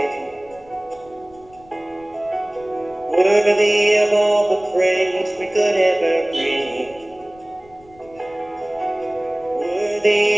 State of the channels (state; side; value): noise; left; rumble, 27 dB below the sound